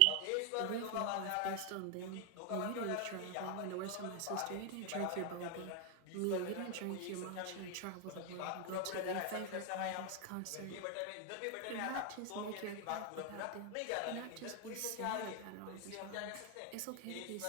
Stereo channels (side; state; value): both; different; correlation 0.00